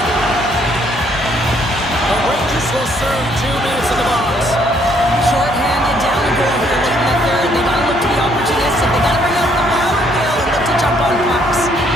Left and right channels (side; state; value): both; normal; correlation 0.67